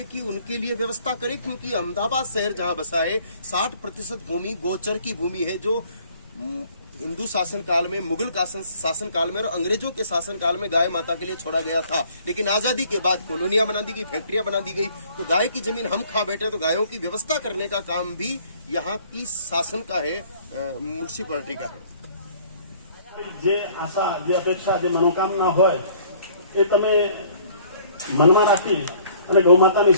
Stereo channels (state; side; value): inverted; both; correlation -0.57